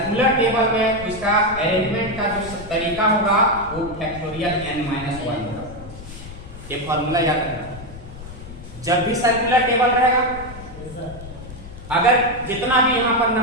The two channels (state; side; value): noise; left; rumble, 14 dB below the sound